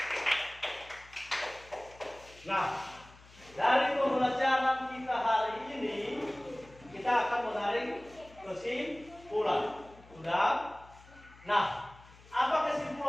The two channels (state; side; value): noise; left; hum, 23 dB below the sound